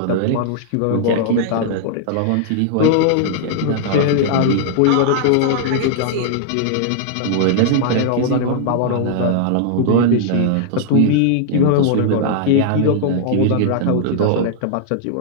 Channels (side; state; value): both; different; correlation -0.01